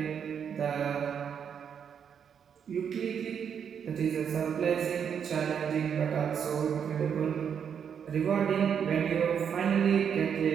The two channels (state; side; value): quieter; left; 7.7 dB